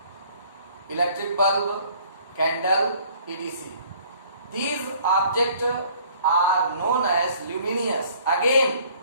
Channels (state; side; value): inverted; both; correlation -0.56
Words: electric bulb, candle, etc. These objects are known as luminous. Again,